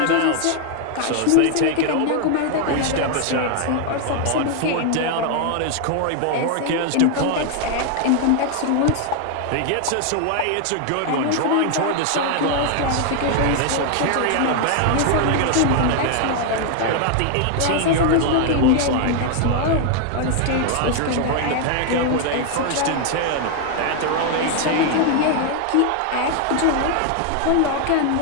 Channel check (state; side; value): different; both; correlation 0.00